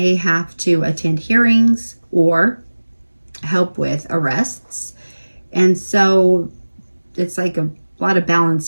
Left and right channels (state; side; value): inverted; both; correlation -1.00